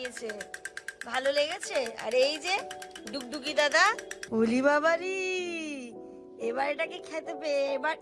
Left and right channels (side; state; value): both; identical; correlation 1.00